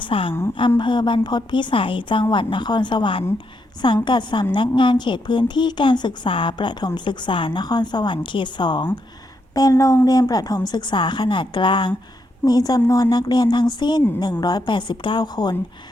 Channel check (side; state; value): both; normal; correlation 0.80